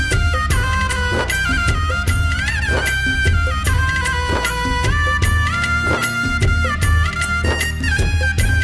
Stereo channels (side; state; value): both; identical; correlation 1.00